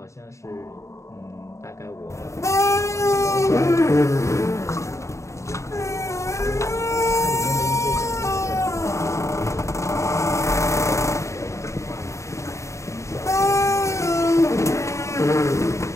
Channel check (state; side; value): late; right; 0.14 ms